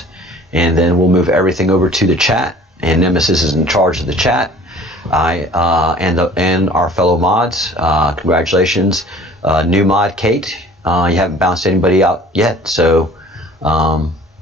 and then we'll move everything over to the chat. And Nemesis is in charge of the chat. And our fellow mods, congratulations, new mod Kate. You haven't bounced anybody out yet, so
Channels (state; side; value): normal; both; correlation 0.49